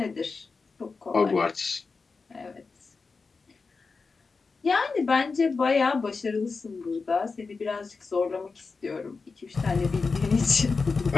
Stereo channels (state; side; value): quieter; right; 4.5 dB